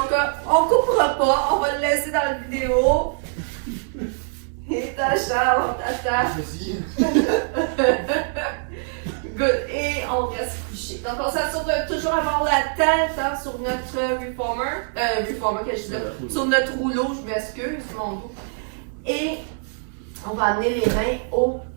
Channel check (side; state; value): left; silent; digital silence